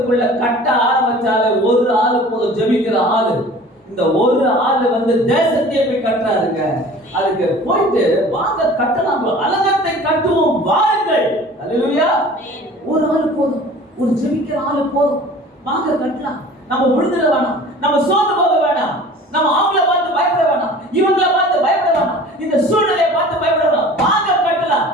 கட்ட ஆரம்பிச்சாலே ஒரு ஆளு போதும், ஜெபிக்கிற ஆளு. இந்த ஒரு ஆளு வந்து தேசத்தையே போய் கட்டுறாருங்க. அதுக்கு போயிட்டு வாங்க கட்டலாம், அலங்கத்தை கட்டுவோம் வாருங்கள். ஹalleluya. ஒரு ஆளு போதும், ஒரு ஜெபிக்கிற ஆளு போதும், வாங்க கட்டலாம். நம்ம விழுந்துட வேணாம், நம்ம சோர்ந்து போக வேணாம், நம்ம அவங்கள பார்த்து பயப்பட வேணாம், இவங்கள பார்த்து பயப்பட வேணாம், இந்த சூழ்நிலையை பார்த்து பயப்பட வேணாம், வாங்க கட்டலாம்.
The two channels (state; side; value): normal; both; correlation 0.44